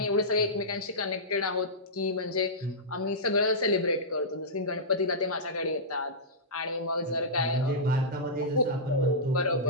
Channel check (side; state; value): both; normal; correlation -0.14